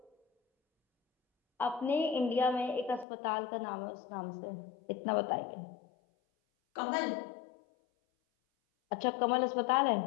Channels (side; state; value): right; drops out; at 3.1 s